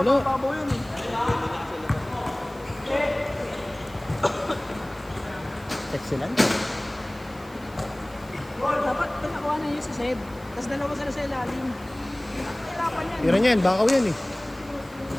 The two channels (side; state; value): right; noise; hiss, 24 dB below the sound